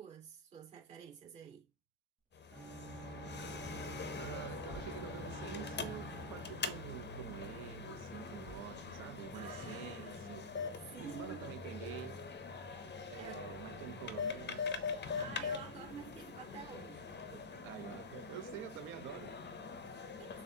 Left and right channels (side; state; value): both; normal; correlation -0.07